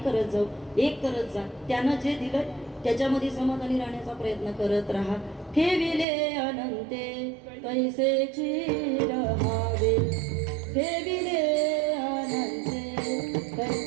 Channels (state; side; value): drops out; left; at 6.1 s